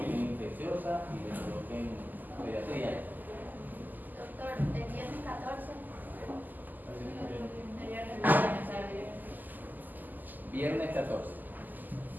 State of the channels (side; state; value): left; late; 0.085 ms